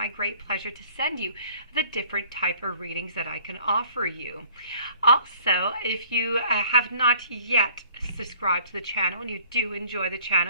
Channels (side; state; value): both; inverted; correlation -0.55